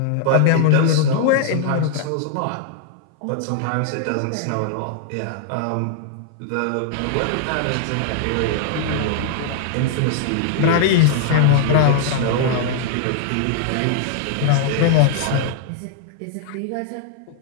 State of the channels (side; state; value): both; different; correlation -0.01